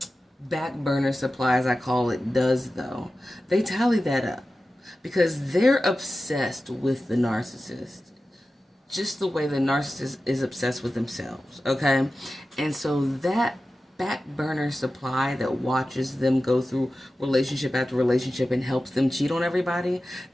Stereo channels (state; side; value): normal; both; correlation 0.94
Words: back burner supply, as I call it, does though. They tally that up, because they're obsessed with the narcissist, just the way the narcissist is obsessed with themselves, okay? And so that back burner supply that watches them go through relationship after relationship and helps them cheat on everybody,